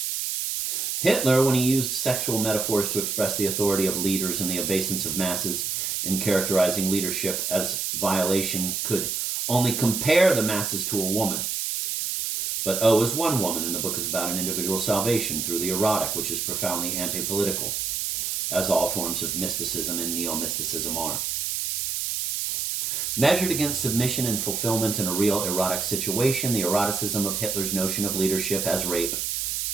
Hitler, when he used sexual metaphors to express the authority of leaders and the obeisance of masses in characterizing leadership as violation, could only compare the masses to a woman. But O is one woman, and the book is about an individual's salvation through the erotic, which is profoundly anti-political, as all forms of mysticism and neo-mysticism are. Measured against submission and fulfillment in a real erotic situation, the eroticism of Hitler's notion of leadership as rape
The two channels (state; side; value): noise; right; hiss, 1 dB below the sound